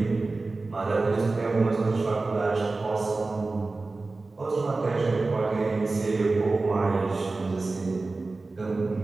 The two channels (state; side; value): quieter; left; 3.5 dB